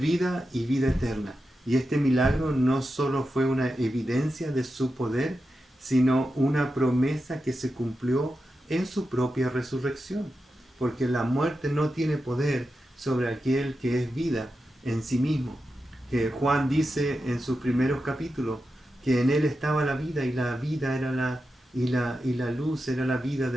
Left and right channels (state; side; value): normal; both; correlation 0.90